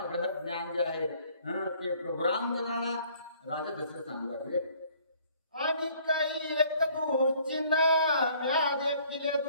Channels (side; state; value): both; inverted; correlation -0.59